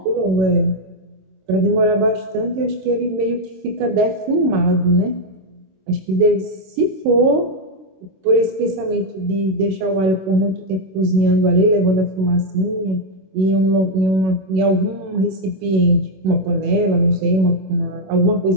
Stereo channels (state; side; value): late; left; 26 ms